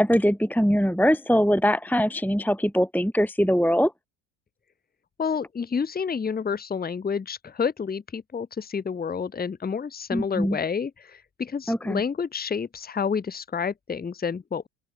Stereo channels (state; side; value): normal; both; correlation 0.82